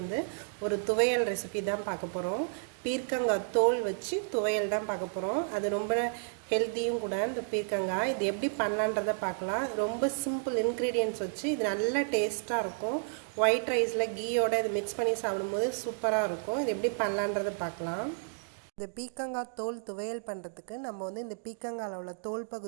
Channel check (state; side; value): silent; left; digital silence